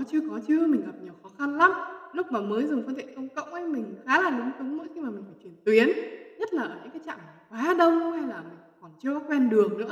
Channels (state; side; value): identical; both; correlation 1.00